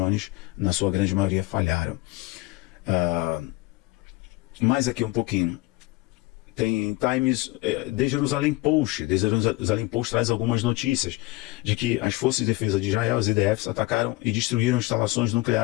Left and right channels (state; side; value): quieter; right; 20.9 dB